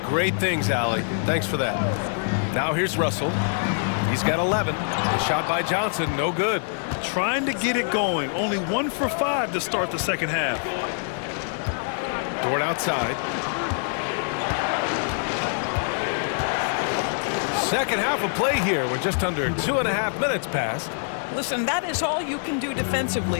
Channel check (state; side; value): silent; right; 62 dB below the other